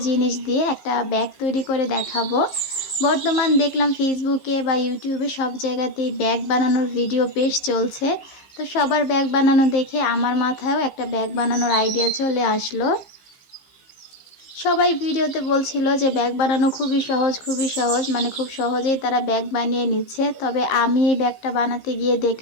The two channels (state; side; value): late; right; 15 ms